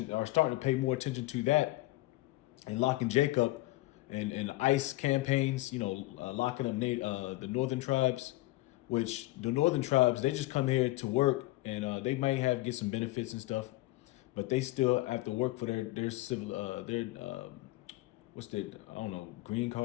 or starting to pay more attention to that, and locking Jacob and ICE campaigns, you know, locking up the northern tribes, which the northern tribes, they just come here to work and they might get some benefits and stuff, but they still have to work for their civil what's their, I don't know, green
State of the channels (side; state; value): right; quieter; 19.1 dB